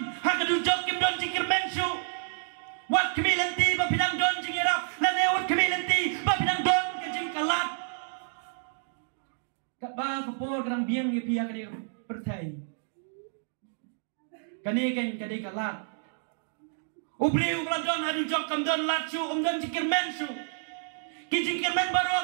ha kadujok ki bamdon jingkermen su. Wat kemi lenti ba pinang don jingirap lane wat kemi lenti ba pinang don ke jingkalat. Kat ba kapor kadang biang ye pihak dia pertai. Kani kan kadai kalat. Ubreu ladon hadu jok kam don latsu don jingkermen su. Ki jingkermen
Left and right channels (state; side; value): silent; left; digital silence